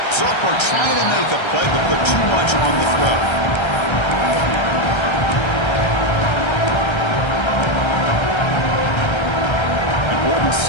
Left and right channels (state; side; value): late; right; 1.3 ms